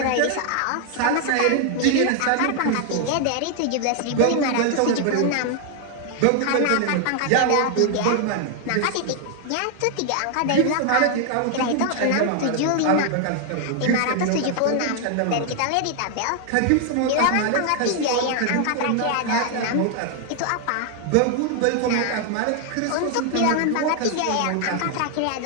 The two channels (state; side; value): different; both; correlation 0.00